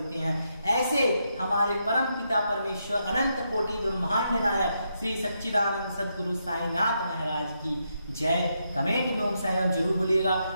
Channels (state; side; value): inverted; both; correlation -0.81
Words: हैं। ऐसे हमारे परम पिता परमेश्वर अनंत कोटि ब्रह्मांड नायक श्री सच्चिदानंद सद्गुरु साईनाथ महाराज की जय। कमेंट में ओम साईं राम जरूर बोलिएगा